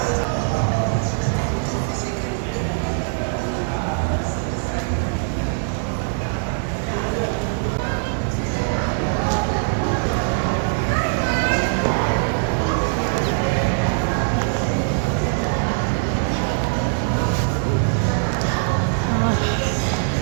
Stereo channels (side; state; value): left; silent; digital silence